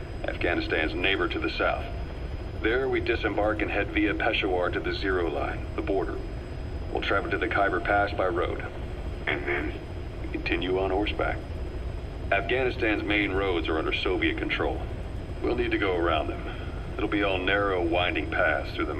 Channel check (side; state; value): both; identical; correlation 1.00